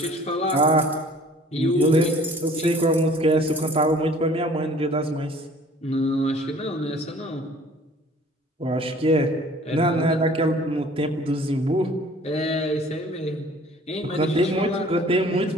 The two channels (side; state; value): both; normal; correlation 0.51